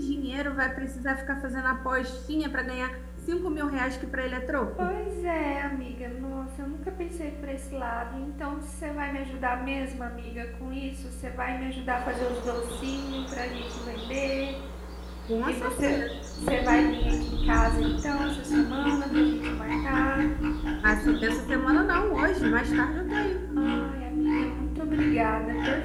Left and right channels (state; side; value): identical; both; correlation 1.00